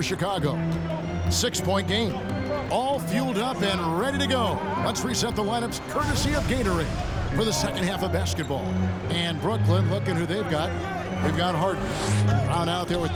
Chicago. 6-point game. All fueled up and ready to go. Let's reset the lineups courtesy of Gatorade for the second half of basketball. And Brooklyn, looking who they've got. They've got Harden. Brown out there with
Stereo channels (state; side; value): identical; both; correlation 1.00